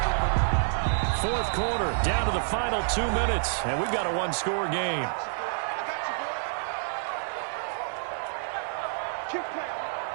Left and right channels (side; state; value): left; silent; 59 dB below the other